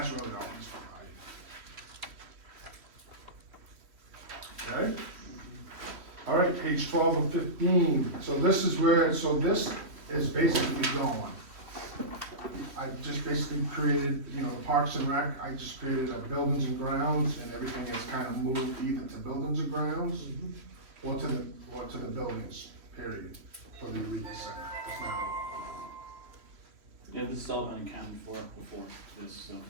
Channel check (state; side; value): late; left; 3.1 ms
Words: really all he's providing. Okay? All right, page 12 of 15, so this is this is basically going. I just basically created, you know, the Parks and Rec, I just created a buildings and grounds, and everything is kind of moved either to buildings and grounds, or to the buildings, period, for the Eureka Center. It's now, Yeah, this has all been accounted for before this, so,